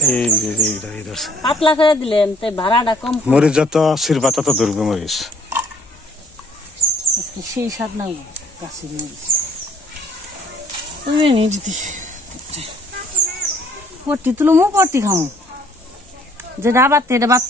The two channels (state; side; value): normal; both; correlation 0.60